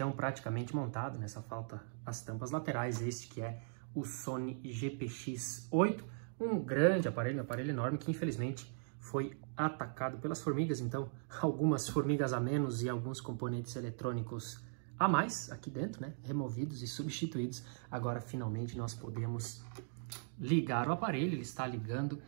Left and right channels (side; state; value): left; silent; digital silence